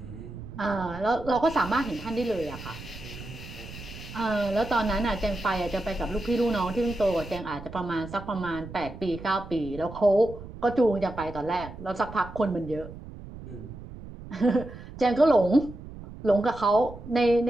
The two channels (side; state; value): right; noise; rumble, 14 dB below the sound